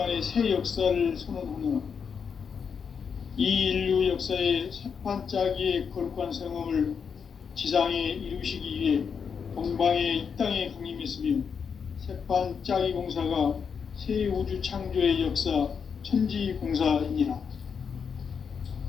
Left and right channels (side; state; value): right; quieter; 6.5 dB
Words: 새 역사를 선언하노라. 이 인류 역사의 새판짜기의 거룩한 성험을 지상에 이루시기 위해 동방의 이 땅에 강림했으며 새판짜기 공사가 새 우주 창조의 역사 천지공사이니라.